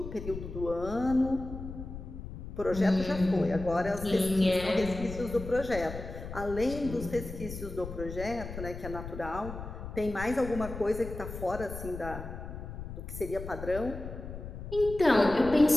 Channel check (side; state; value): left; noise; rumble, 9 dB below the sound